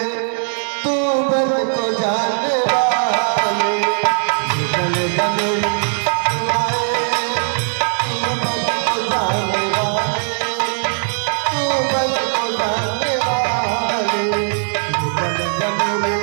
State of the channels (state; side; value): silent; left; 67 dB below the other